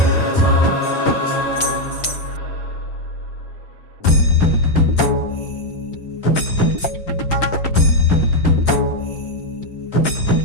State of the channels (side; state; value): right; late; 5.6 ms